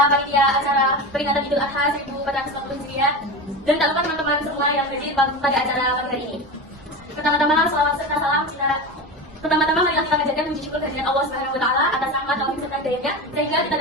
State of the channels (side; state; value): both; normal; correlation 0.24